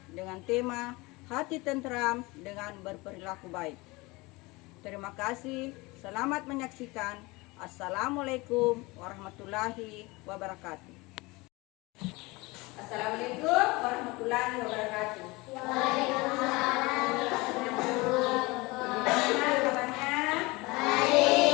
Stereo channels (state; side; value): quieter; right; 23.6 dB